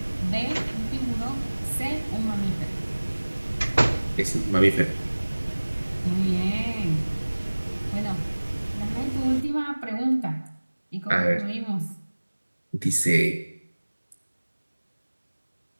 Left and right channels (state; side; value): inverted; both; correlation -1.00